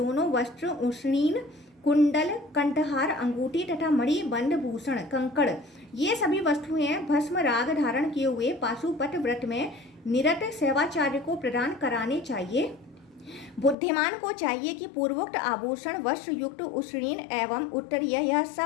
वस्त्र, उष्णीन, कुंडल, कंठहार, अंगूठी तथा मणि, बंद, भूषण, कंकड़ ये सभी वस्तुएं भस्म राग धारण किए हुए पाशुपत व्रत में निरत सेवाचार्य को प्रदान कराने चाहिए। बुद्धिमान को चाहिए कि पूर्वोक्त आभूषण, वस्त्र युक्त उष्णीन एवं उत्तरीय यह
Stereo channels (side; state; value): right; drops out; at 13.8 s